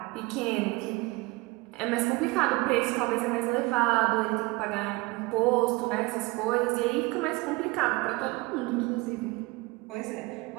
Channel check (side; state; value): left; quieter; 23.7 dB